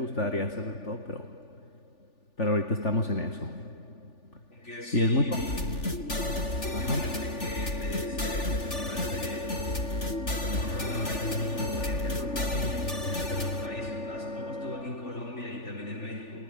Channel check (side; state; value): right; late; 3.4 ms